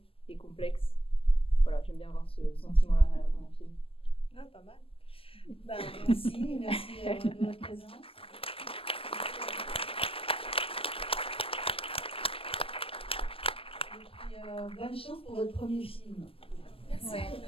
et complexe, voilà, j'aime bien avoir ce sentiment là à la fin d'un film. Pas mal. Merci de votre présence. Et puis, bonne chance pour votre premier film. Merci.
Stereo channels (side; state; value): right; late; 0.27 ms